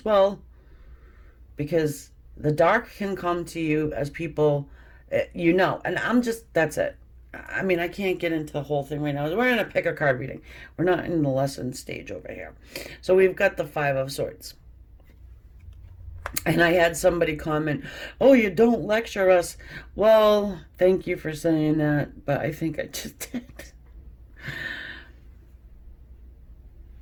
well. Because the dark can come to you as people, you know. And that's it. I mean, I can't get into the whole thing right now. We're in a pick a card reading. We're not in the lesson stage over here. So we've got the Five of Swords. And I had somebody comment, oh, you don't lecture us. Well, thank you for saying that, but I think I just did.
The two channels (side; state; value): both; identical; correlation 1.00